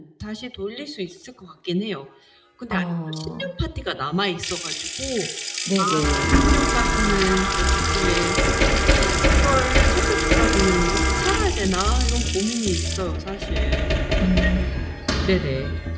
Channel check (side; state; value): both; identical; correlation 1.00